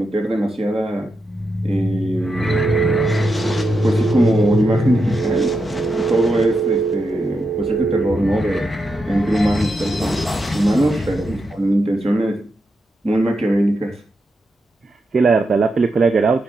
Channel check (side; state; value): both; normal; correlation 0.86